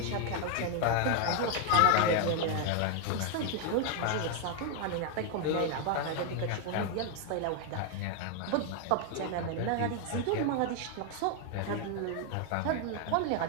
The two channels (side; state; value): both; different; correlation 0.00